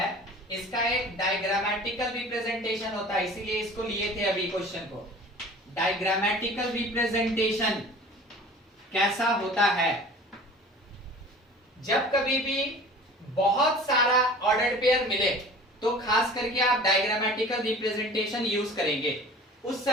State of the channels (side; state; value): both; normal; correlation 0.43